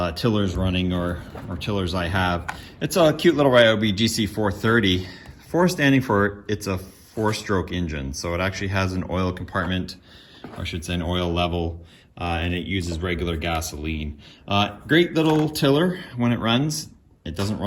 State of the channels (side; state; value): both; identical; correlation 1.00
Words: tillers running or tillers I have. It's a cute little Ryobi GC430. 4 standing for it's a 4-stroke engine, so it actually has an oil compartment, or I should say an oil level. And it uses regular gasoline. Great little tiller when it runs. It doesn't